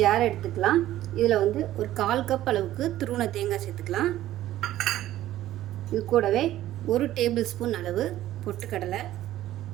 ஜார் எடுத்துக்கலாம். இதில் ஒரு 1/4 கப் அளவுக்கு துருவன தேங்காய் சேர்த்துக்கலாம். இது கூடவே 1 டேபிள் ஸ்பூன் அளவு பொட்டுக்கடலை,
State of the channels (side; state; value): left; quieter; 13.9 dB